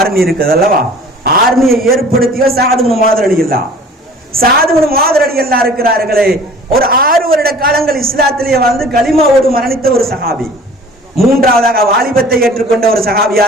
இருக்குது அல்லவா, ஆர்மியை ஏற்படுத்தியோர் சஅத் இப்னு முஆத் ரலியல்லாஹு. சஅத் இப்னு முஆத் ரலியல்லாஹு இருக்கிறார்களே, ஒரு 6 வருட காலங்கள் இஸ்லாத்திலேயே வந்து கலிமாவோடு மரணித்த ஒரு சஹாபி. மூன்றாவதாக வாலிபத்தை ஏற்றுக்கொண்ட ஒரு சஹாபி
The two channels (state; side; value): normal; both; correlation 0.47